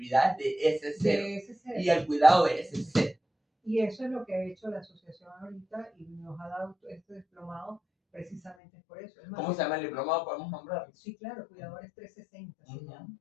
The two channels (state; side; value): drops out; right; at 8.6 s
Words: de ese ser De ese ser. y el cuidado de ese ser. Y eso es lo que ha hecho la asociación ahorita y nos ha dado este diplomado precisamente por eso. Es más, ¿Cómo se llama el diplomado? ¿Podemos nombrarlo? sí, claro, Cuidadores 360 se llama.